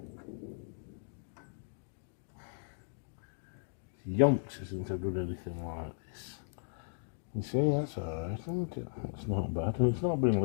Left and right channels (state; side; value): silent; right; digital silence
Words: Yonks isn't have done anything like this. You see, that's alright, isn't it? It's not bad, and it's not been